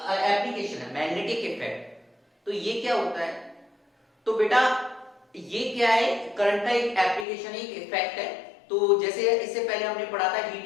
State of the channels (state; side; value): drops out; right; at 7.2 s